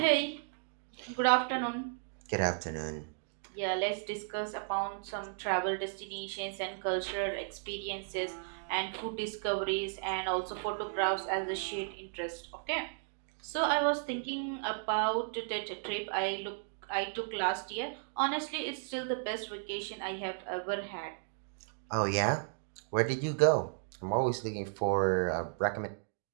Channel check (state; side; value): silent; left; digital silence